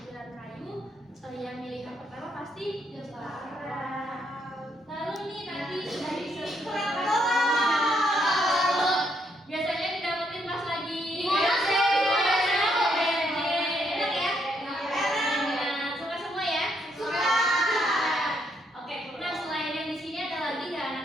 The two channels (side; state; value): both; normal; correlation 0.75